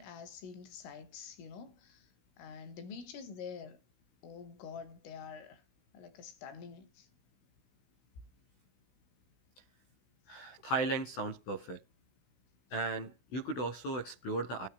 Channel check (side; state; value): right; late; 16 ms